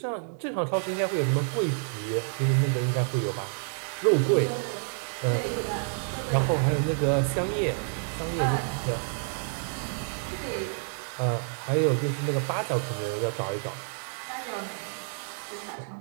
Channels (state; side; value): silent; left; 59 dB below the other